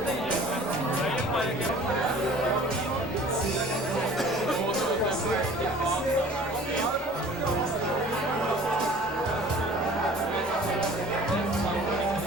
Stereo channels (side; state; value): both; normal; correlation 0.47